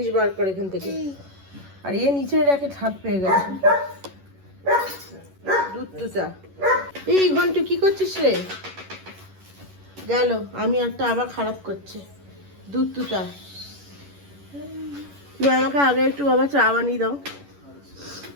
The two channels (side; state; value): left; late; 11 ms